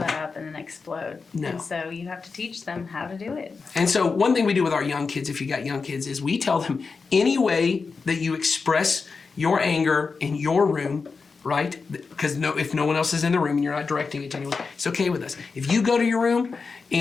up and then explode. No. And so you have to teach them how to do it. And so one thing we do with our young kids, if you got young kids, is we tell them any way that you express your anger in your room, right? Because if no one else is in the room and you're not directing it to anyone, it's okay with us. If you go to your room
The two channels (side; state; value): right; quieter; 4.7 dB